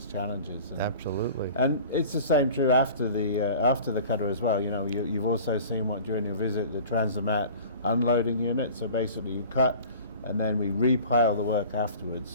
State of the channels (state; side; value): inverted; both; correlation -0.42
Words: challenges. And, Absolutely. And it's the same true after the cutter as well. You've also seen what during your visit, the Transomat unloading unit. So basically, you cut, and then we repile the work afterwards.